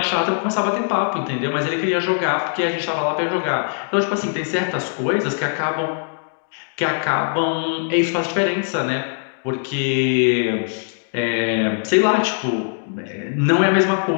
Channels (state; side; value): silent; right; digital silence